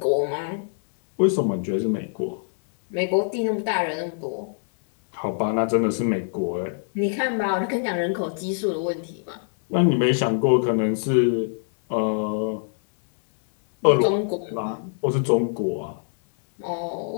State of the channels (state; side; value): silent; right; 63 dB below the other